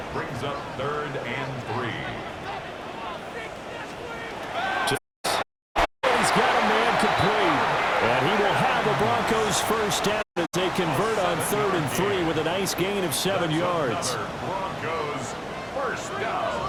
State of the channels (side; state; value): both; identical; correlation 1.00